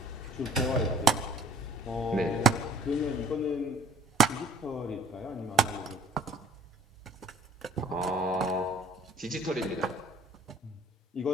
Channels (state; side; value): normal; both; correlation 0.55